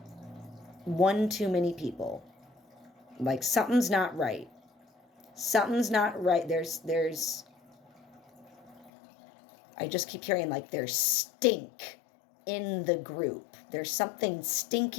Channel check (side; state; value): right; drops out; at 8.9 s